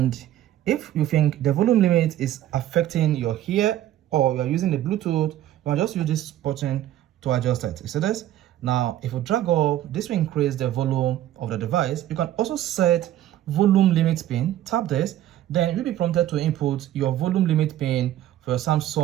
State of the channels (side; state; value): left; quieter; 12.8 dB